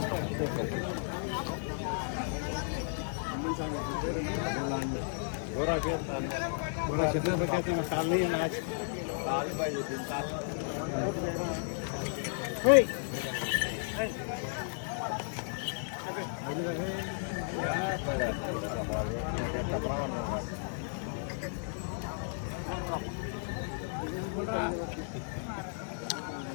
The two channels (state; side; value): silent; right; digital silence